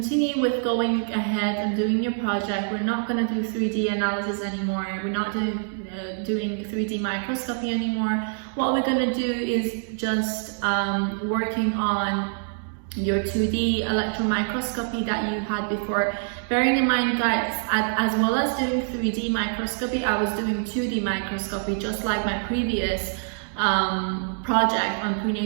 with going ahead and doing your project. We're not going to do 3D analysis anymore. We're not doing 3D microscopy anymore. What we're going to do is just working on your 2D electron microscopy that you had before. Bearing in mind, guys, as well as doing 3D microscopy, I was doing 2D microscopy, just like my previous project on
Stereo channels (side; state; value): left; silent; digital silence